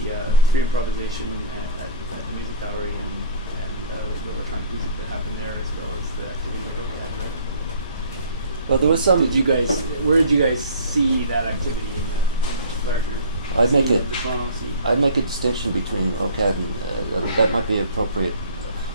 free improvisation at the music gallery and the electronic music that happened there, as well as the activity that OCAD had. Well, there was some. Where did you guys see that activity in the larger? I'd make a distinction between OCAD and that might be appropriate.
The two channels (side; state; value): both; inverted; correlation -0.42